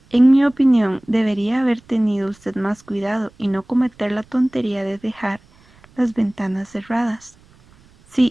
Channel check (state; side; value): noise; right; rumble, 29 dB below the sound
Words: En mi opinión, debería haber tenido usted más cuidado y no cometer la tontería de dejar las ventanas cerradas.